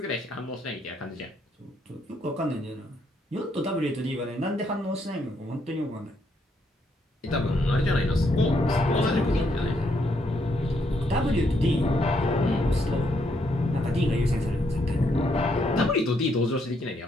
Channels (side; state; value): both; normal; correlation 0.74